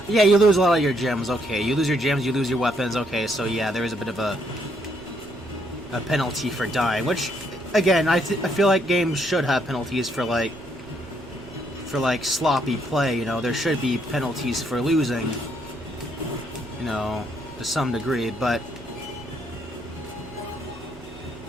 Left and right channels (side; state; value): both; normal; correlation 0.72